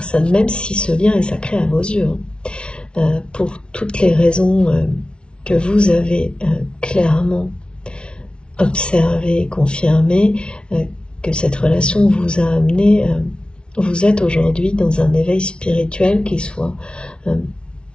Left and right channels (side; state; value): right; late; 0.057 ms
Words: même si ce lien est sacré à vos yeux, pour toutes les raisons que vous avez clairement observées, confirmées, que cette relation vous a amené, vous êtes aujourd'hui dans un éveil spirituel qui soit